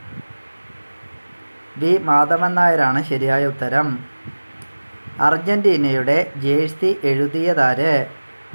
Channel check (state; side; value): inverted; both; correlation -1.00